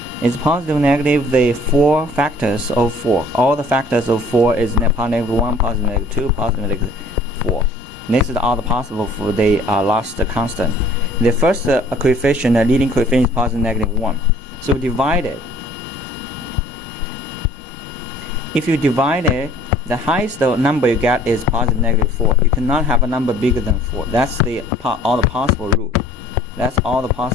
It's positive, negative, the 4 factors of 4. All the factors of 4 is positive -1, positive -2, positive -4. This is all the possible for the last constant. The first coefficient, the leading coefficient, is positive -1. So divide it. If you divide it, the highest number you get is positive -4. You cannot have a number bigger than 4. That's all the possible root. That's all the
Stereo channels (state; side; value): normal; both; correlation 0.54